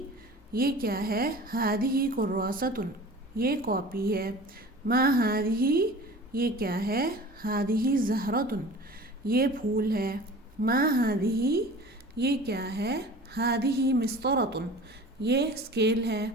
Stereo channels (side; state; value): both; normal; correlation 0.40